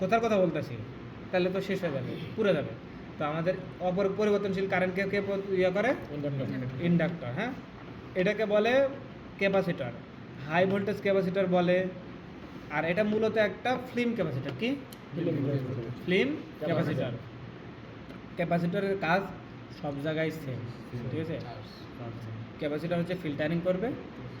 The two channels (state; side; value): identical; both; correlation 1.00